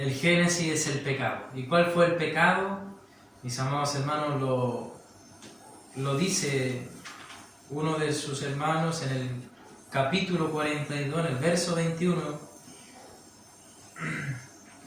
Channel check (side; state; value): both; identical; correlation 1.00